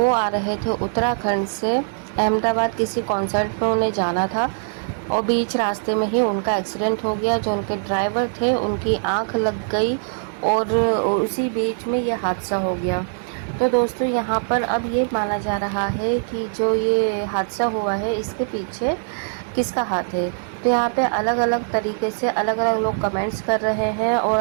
आ रहे थे उत्तराखंड से अहमदाबाद, किसी कॉन्सर्ट में उन्हें जाना था और बीच रास्ते में ही उनका एक्सीडेंट हो गया। जो उनके ड्राइवर थे, उनकी आंख लग गई और उसी बीच में ये हादसा हो गया। तो दोस्तों, यहाँ पर अब ये माना जा रहा है कि जो ये हादसा हुआ है, इसके पीछे किसका हाथ है। तो यहाँ पे अलग अलग तरीके से अलग अलग लोग कमेंट्स कर रहे हैं और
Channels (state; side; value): silent; left; digital silence